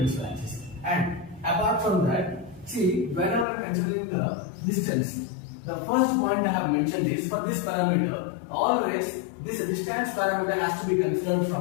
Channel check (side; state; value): right; drops out; at 3.5 s